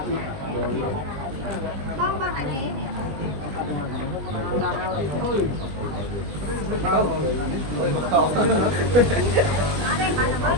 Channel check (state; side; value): late; left; 20 ms